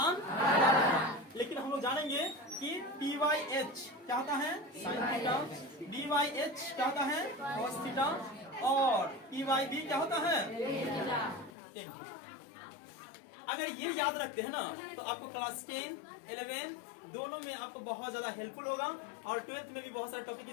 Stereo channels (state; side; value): drops out; right; at 11.5 s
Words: लेकिन हम लोग जानेंगे कि पी वाई एच क्या होता है, sine theta, B Y H क्या होता है, कॉस थीटा, और पी वाई बी क्या होता है, टेन। अगर ये याद रखते हैं ना तो आपको क्लास 10, 11 दोनों में आपको बहुत ज्यादा हेल्पफुल होगा, और 12th में भी बहुत सारे टॉपिक